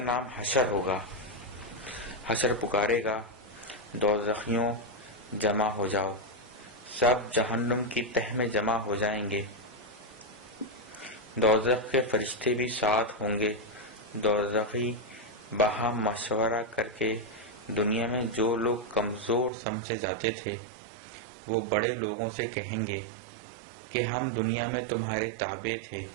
نام حشر ہوگا۔ حشر پکارے گا، دوزخیوں جمع ہو جاؤ، سب جہنم کی تہہ میں جمع ہو جائیں گے۔ دوزخ کے فرشتے بھی ساتھ ہوں گے۔ دوزخی باہم مشورہ کر کے دنیا میں جو لوگ کمزور سمجھے جاتے تھے، وہ بڑے لوگوں سے کہیں گے کہ ہم دنیا میں تمہارے تابع تھے،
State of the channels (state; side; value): drops out; left; at 19.5 s